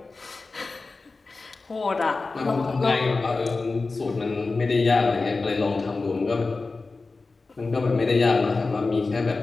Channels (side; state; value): right; quieter; 3.8 dB